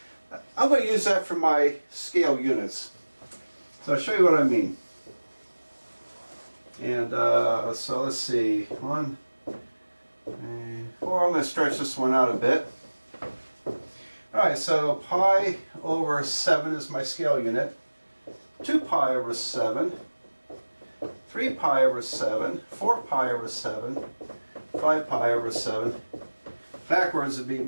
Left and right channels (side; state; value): both; inverted; correlation -1.00